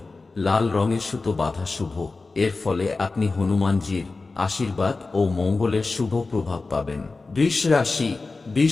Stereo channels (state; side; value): quieter; right; 3.7 dB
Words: লাল রঙের সুতো বাঁধা শুভ। এর ফলে আপনি হনুমানজির আশীর্বাদ ও মঙ্গলের শুভ প্রভাব পাবেন।